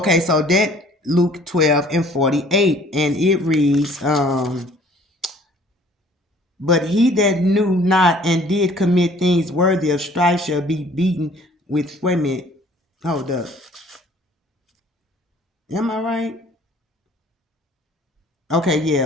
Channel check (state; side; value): normal; both; correlation 0.54